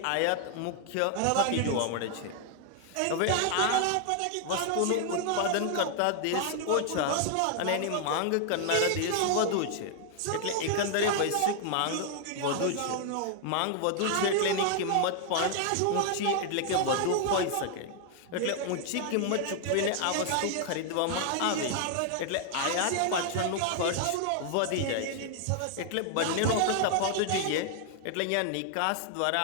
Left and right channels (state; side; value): different; both; correlation 0.00